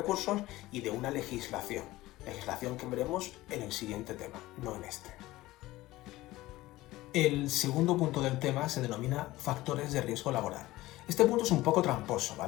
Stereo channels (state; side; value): quieter; right; 17.8 dB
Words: y de una legislación que veremos en el siguiente tema, no en este. El segundo punto del tema se denomina factores de riesgo laboral. Este punto es un poco tramposo,